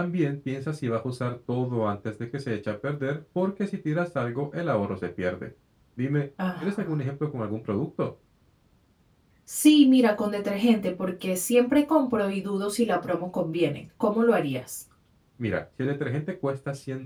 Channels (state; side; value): identical; both; correlation 1.00